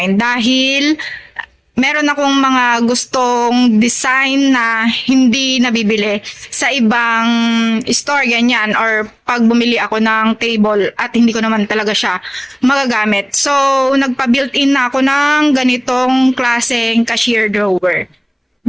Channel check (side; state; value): both; identical; correlation 1.00